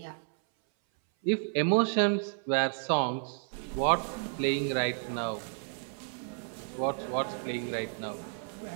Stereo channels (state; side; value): silent; left; 57 dB below the other